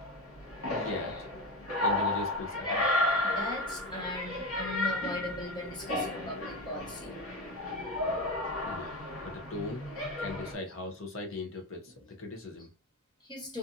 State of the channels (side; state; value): both; normal; correlation 0.20